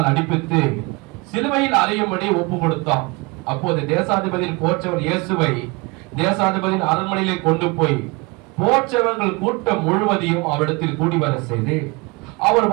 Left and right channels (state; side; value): quieter; left; 26.3 dB